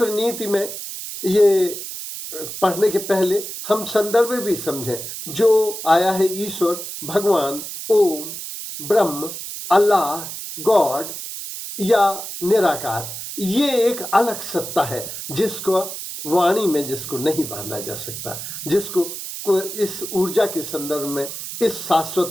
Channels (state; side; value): noise; right; hiss, 8 dB below the sound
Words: नीति में ये पढ़ने के पहले हम संदर्भ भी समझें। जो आया है ईश्वर, भगवान, ओम, ब्रह्म, अल्लाह, गॉड या निराकार, ये एक अलग सत्ता है जिसको वाणी में जिसको नहीं बांधा जा सकता, जिसको इस ऊर्जा के संदर्भ में, इस